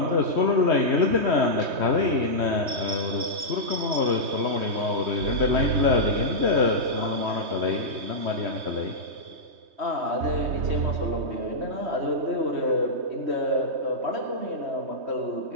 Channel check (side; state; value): left; late; 3.2 ms